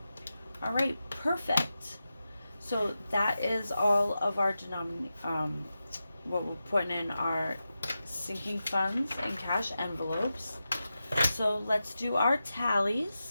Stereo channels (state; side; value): inverted; both; correlation -0.91